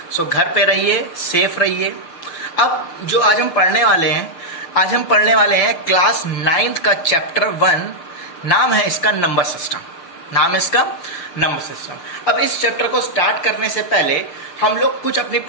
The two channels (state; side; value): late; right; 6.9 ms